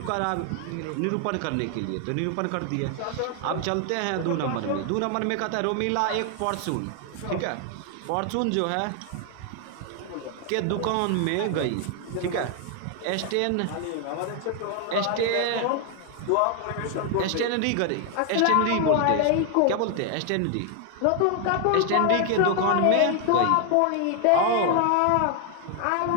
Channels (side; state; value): both; different; correlation 0.00